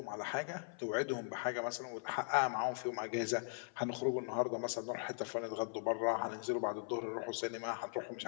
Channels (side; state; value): right; silent; 51 dB below the other